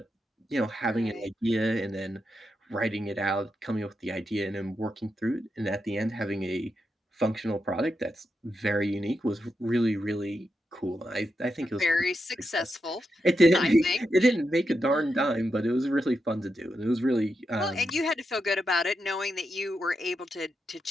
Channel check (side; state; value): both; normal; correlation 0.86